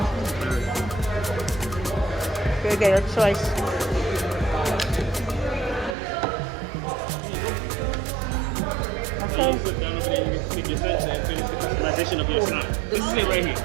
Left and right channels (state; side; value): drops out; left; at 6.0 s